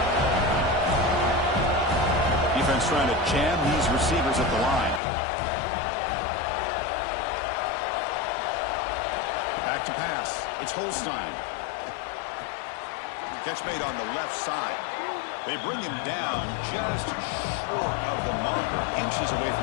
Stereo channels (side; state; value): right; drops out; at 5.0 s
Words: Defense trying to jam these receivers at the line. Back to pass. It's Holstein. Catch made on the left side. They bring him down just short of the marker, inches away